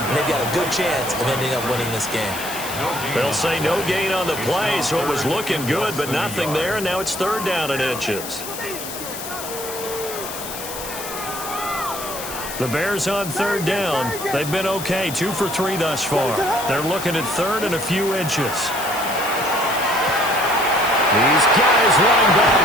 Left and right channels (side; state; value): left; noise; hiss, 9 dB below the sound